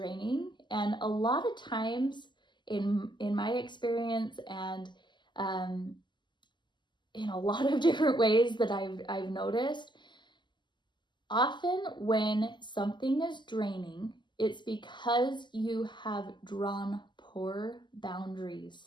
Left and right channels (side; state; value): right; late; 0.22 ms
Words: And a lot of times in my experience, and in a lot of different ways that I've noticed, often when something is draining, it's because you have drawn poor